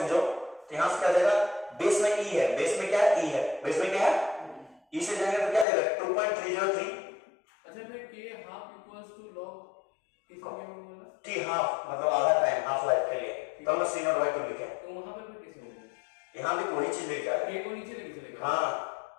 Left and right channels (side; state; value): right; drops out; at 5.7 s